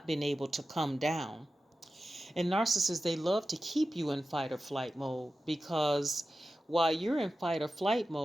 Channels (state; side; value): normal; both; correlation 0.93